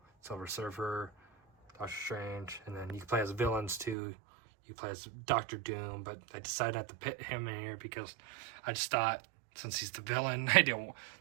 Silver Surfer, Doctor Strange, and then you can play as villains too. You play as Doctor Doom, but I decided not to put him in here because I just thought, since he's the villain,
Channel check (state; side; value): drops out; left; at 4.0 s